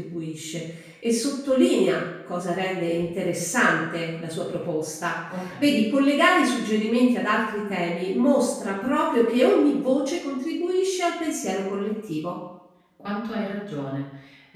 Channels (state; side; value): identical; both; correlation 1.00